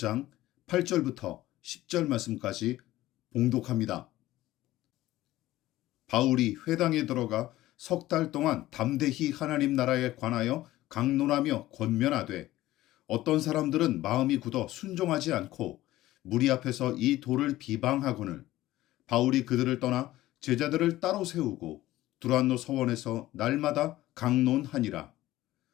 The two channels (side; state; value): right; quieter; 15.9 dB